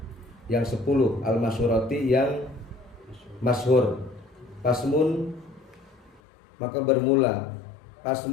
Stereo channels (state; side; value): drops out; right; at 6.2 s